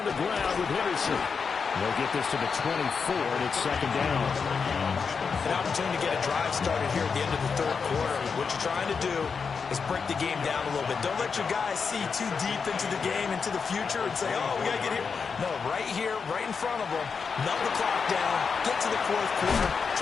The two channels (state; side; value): quieter; right; 5.6 dB